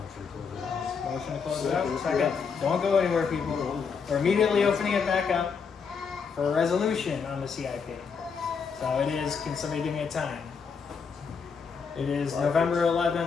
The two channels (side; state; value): right; quieter; 5.8 dB